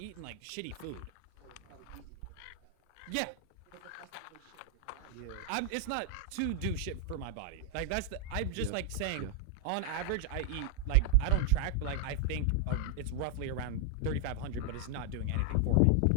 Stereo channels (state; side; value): different; both; correlation 0.00